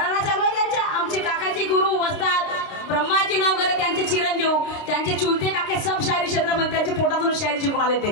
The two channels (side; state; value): right; late; 29 ms